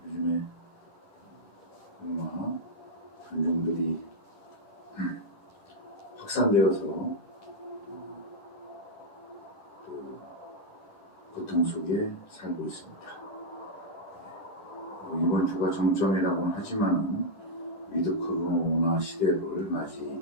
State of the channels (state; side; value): late; right; 14 ms